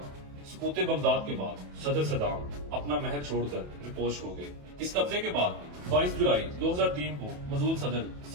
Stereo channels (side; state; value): left; late; 28 ms